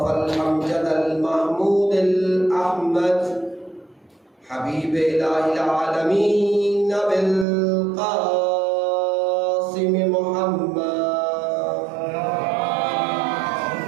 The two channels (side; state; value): left; drops out; at 7.5 s